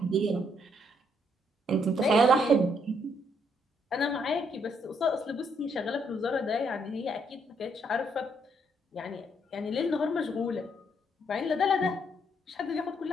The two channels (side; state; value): both; normal; correlation 0.72